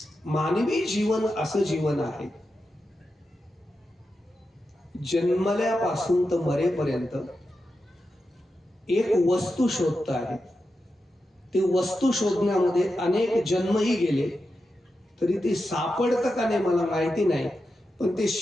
मानवी जीवन असं जीवन आहे, जन्मल्यापासून तर मरेपर्यंत एक वस्तू शोधत आहे. ते वस्तू शोधण्यामध्ये अनेक जन्मही गेले तरी ते सापडतं का नाही मला माहिती नाही, पण ते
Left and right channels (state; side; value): normal; both; correlation 0.89